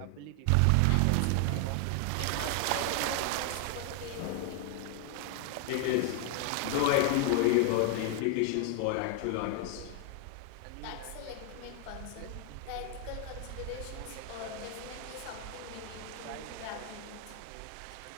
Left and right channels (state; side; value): different; both; correlation 0.00